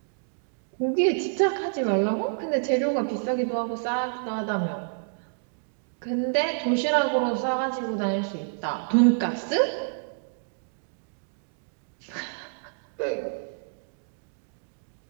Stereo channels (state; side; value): silent; left; digital silence